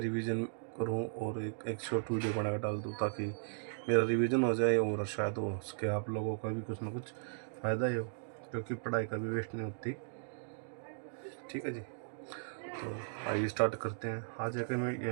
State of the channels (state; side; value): silent; left; digital silence